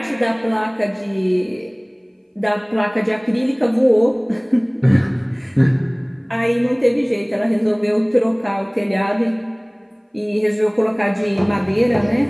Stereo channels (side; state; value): both; identical; correlation 1.00